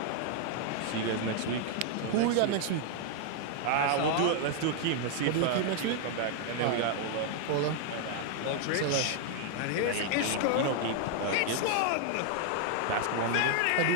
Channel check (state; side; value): different; both; correlation 0.00